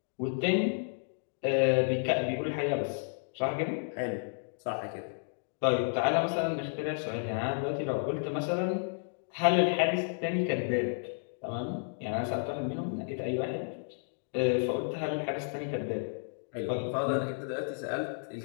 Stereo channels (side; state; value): right; silent; digital silence